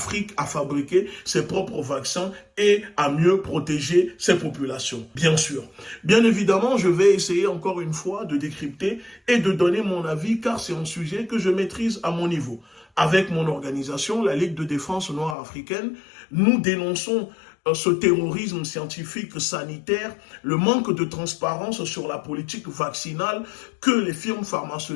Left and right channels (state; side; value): drops out; right; at 15.4 s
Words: à fabriquer ses propres vaccins et à mieux protéger ses populations. Bien sûr. Bien évidemment, je vais essayer encore une fois de décrypter et de donner mon avis car c'est un sujet que je maîtrise à mon niveau. Avec mon organisation, la Ligue de défense noire africaine, nous dénonçons ce terrorisme scientifique sanitaire, le manque de transparence sur la politique vaccinale que les firmes